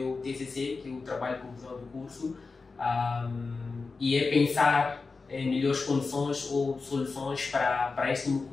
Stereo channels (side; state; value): right; quieter; 4.2 dB